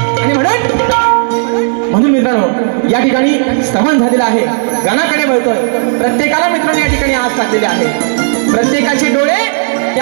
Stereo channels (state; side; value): silent; left; 60 dB below the other